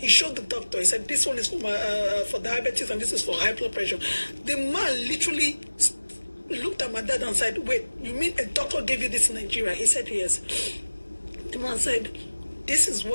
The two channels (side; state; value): both; inverted; correlation -1.00